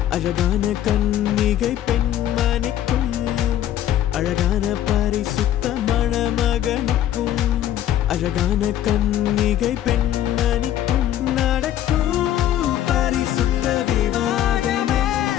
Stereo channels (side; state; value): right; quieter; 11.8 dB